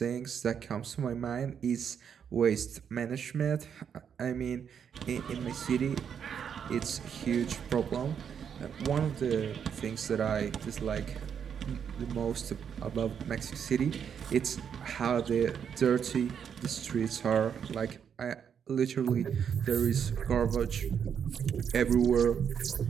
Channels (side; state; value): left; quieter; 7.7 dB